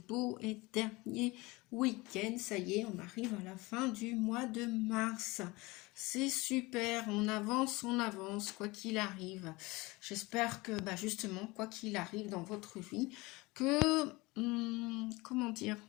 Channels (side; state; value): right; quieter; 22.8 dB